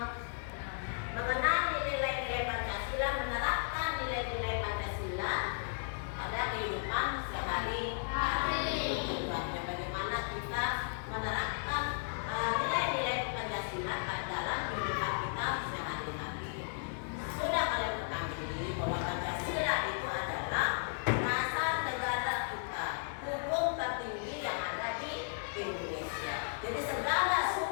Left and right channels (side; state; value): right; silent; digital silence